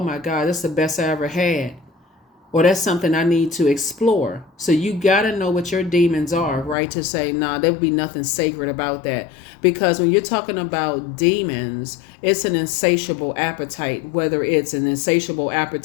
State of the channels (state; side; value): drops out; right; at 6.8 s